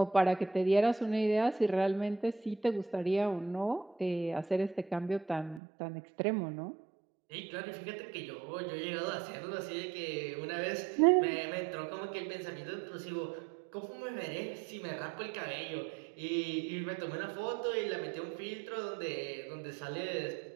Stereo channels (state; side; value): drops out; left; at 5.6 s